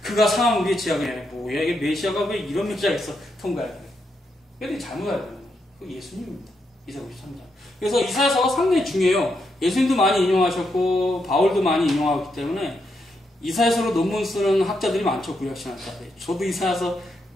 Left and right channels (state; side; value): normal; both; correlation 0.81